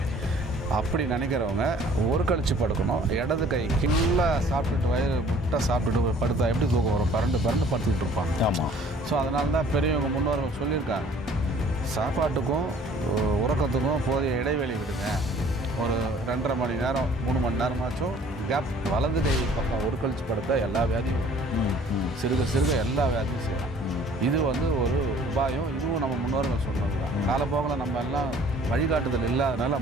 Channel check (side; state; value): both; normal; correlation 0.54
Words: அப்படி நினைக்கிறவங்க ஒரு கழிச்சு படுக்கணும். இடது கை கீழே சாப்பிட்டுட்டு வயிறு முட்டை சாப்பிட்டுட்டு படுத்தா எப்படி தூக்கம் வரும்? பரண்டு படுத்துக்கிட்டு இருப்பாங்க. ஆமாம். ஸோ அதனால தான் பெரியவங்க முன்னோர்கள் சொல்லியிருக்காங்க, சாப்பாட்டுக்கும் உறக்கத்துக்கும் போதிய இடைவெளி விடுங்க. ஒரு 2.5 மணி நேரம் 3 மணி நேரமாச்சும் கேப். வலது கை பக்கம் ஒரு கழிச்சு படுத்தா எல்லா வியாதியும் சிறுக எல்லா வியாதியும் செய்யலாம். இது ஒரு உபாயம். இதுவும் நம்ம முன்னோர்கள் சொன்னது தான். காலப்போக்கில் நம்ம எல்லாம் வழிகாட்டுதல் இல்லாதனால